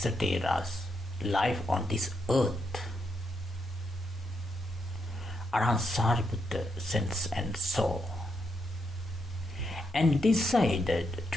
Thera's life on this earth, Arhat Sariputta sensed and saw and decided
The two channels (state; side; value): normal; both; correlation 0.81